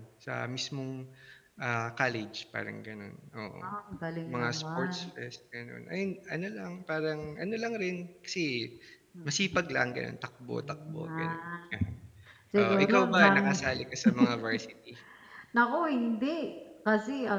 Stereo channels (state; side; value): identical; both; correlation 1.00